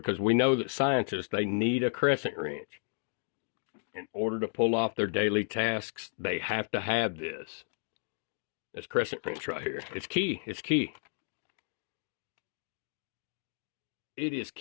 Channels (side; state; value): right; silent; digital silence